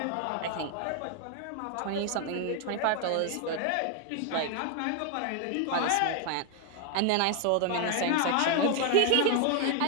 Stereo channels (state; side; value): different; both; correlation 0.00